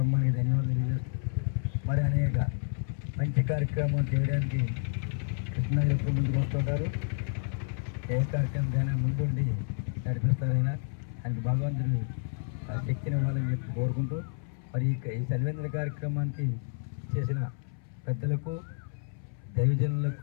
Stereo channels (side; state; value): right; silent; 58 dB below the other